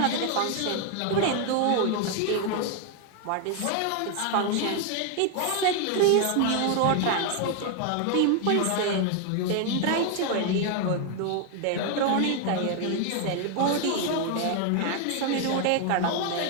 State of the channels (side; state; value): both; different; correlation 0.01